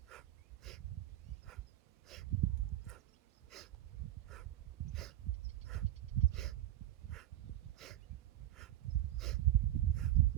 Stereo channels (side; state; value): left; quieter; 13.8 dB